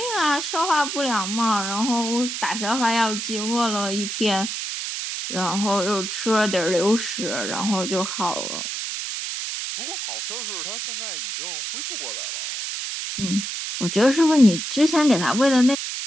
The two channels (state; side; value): noise; right; hiss, 5 dB below the sound